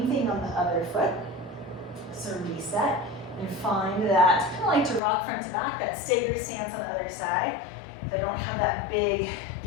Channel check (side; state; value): right; drops out; at 5.0 s